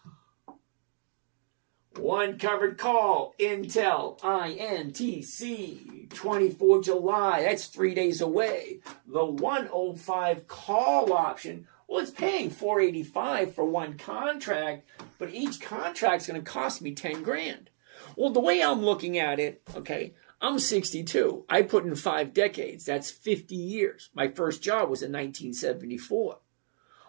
One covered call. Intel. INTC. 24 July. That's 3 days away. The 105 call option. Well, it's paying $485 for one contract, but each contract's going to cost me 10 grand. Well, the way I'm looking at it, okay, I'm 62. I put in 5 decades. That's 50 years. My first job was in 1974.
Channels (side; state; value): left; silent; digital silence